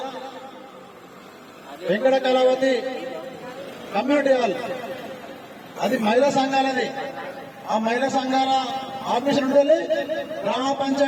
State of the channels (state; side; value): identical; both; correlation 1.00